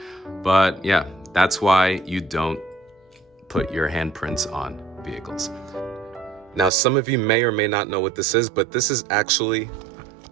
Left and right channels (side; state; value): left; drops out; at 6.7 s